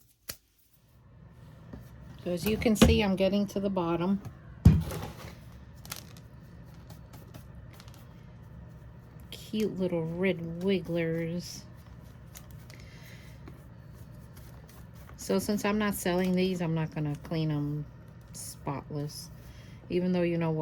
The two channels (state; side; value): identical; both; correlation 1.00